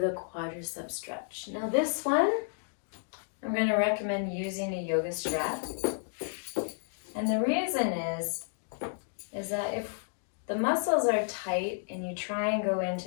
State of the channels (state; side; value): silent; right; digital silence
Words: quadricep stretch. Now this one, I'm going to recommend using a yoga strap. And the reason is that if the muscles are tight and you try and go